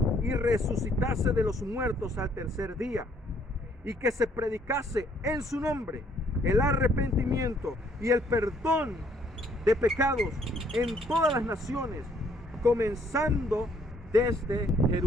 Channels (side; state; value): both; normal; correlation 0.65